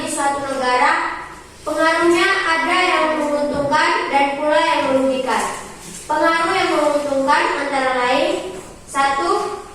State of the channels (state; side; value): identical; both; correlation 1.00